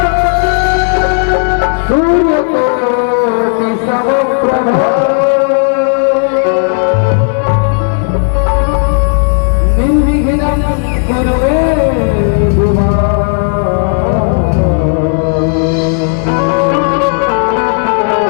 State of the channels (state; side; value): silent; right; digital silence